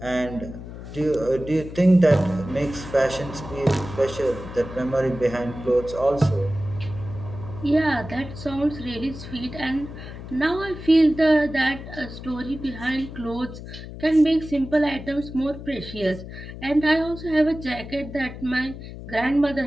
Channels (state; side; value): noise; left; hum, 12 dB below the sound